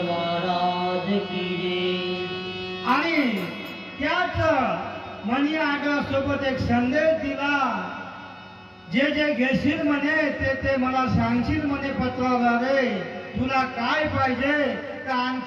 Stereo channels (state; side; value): identical; both; correlation 1.00